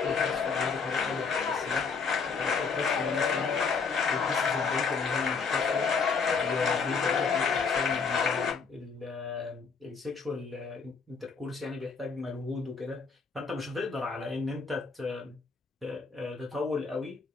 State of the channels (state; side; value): quieter; right; 5.2 dB